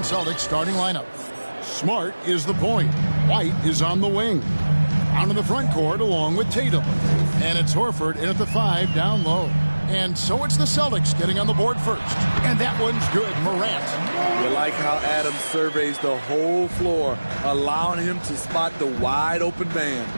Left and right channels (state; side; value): inverted; both; correlation -1.00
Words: Celtics starting lineup. Smart is the point. White is on the wing. Out in the front court along with Tatum. And it's Horford in at the 5 down low. And so it's the Celtics getting on the board first. And that one's good, Morant. You like how Adams surveys the whole floor, allowing him to spot the wide open man.